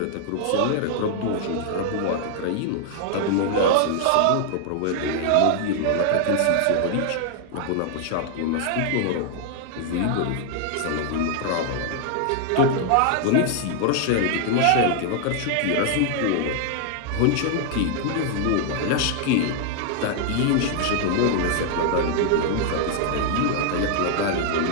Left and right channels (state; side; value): different; both; correlation 0.00